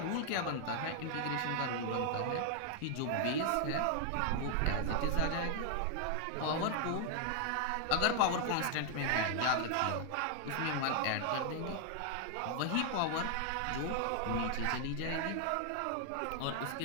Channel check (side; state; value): both; different; correlation 0.00